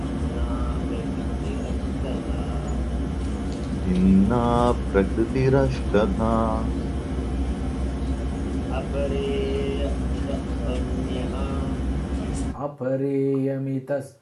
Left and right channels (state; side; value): identical; both; correlation 1.00